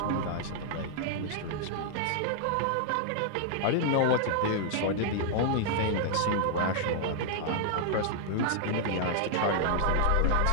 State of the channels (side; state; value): both; different; correlation -0.01